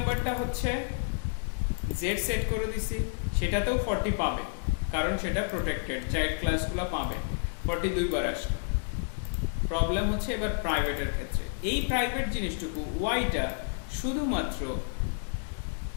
হচ্ছে জেড সেট করে দিছি, সেটাতেও 40 পাবে, কারণ সেটা প্রোটেক্টেড, চাইল্ড ক্লাসগুলো পাবে। 42 বার আসবে। প্রবলেম হচ্ছে এবার প্রাইভেটের ক্ষেত্রে। এই প্রাইভেট জিনিসটুকু ওয়াইটা শুধুমাত্র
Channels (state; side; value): silent; right; digital silence